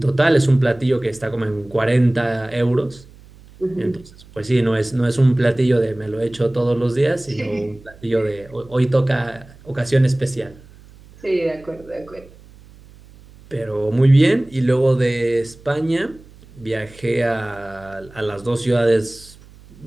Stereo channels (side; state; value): right; noise; hum, 23 dB below the sound